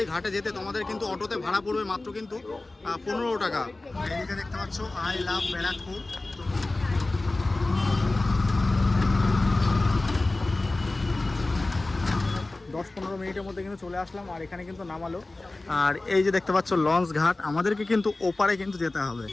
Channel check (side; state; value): right; quieter; 3.0 dB